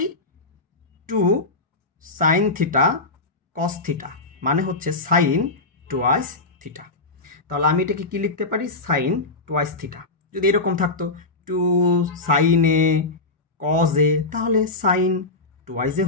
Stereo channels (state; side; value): quieter; right; 3.3 dB